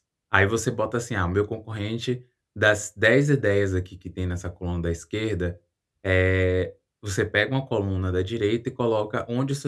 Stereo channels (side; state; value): both; identical; correlation 1.00